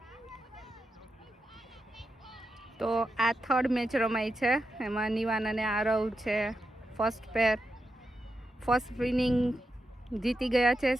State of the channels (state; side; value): normal; both; correlation 0.87